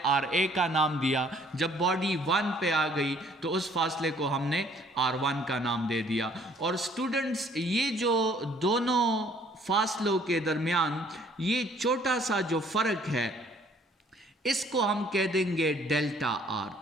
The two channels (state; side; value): normal; both; correlation 0.60